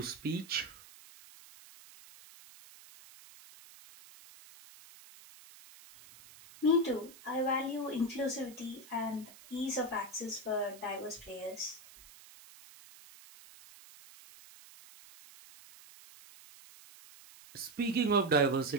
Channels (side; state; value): right; noise; hiss, 20 dB below the sound